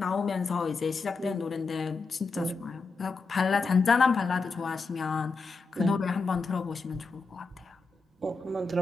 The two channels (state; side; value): quieter; right; 4.2 dB